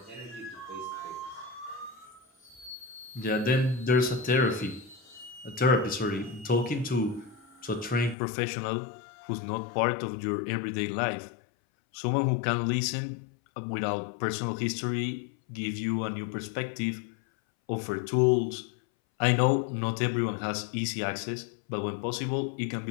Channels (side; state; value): right; drops out; at 8.2 s